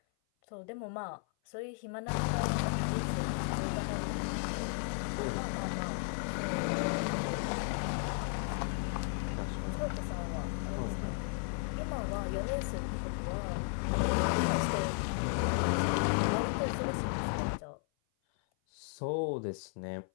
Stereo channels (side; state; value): right; silent; 55 dB below the other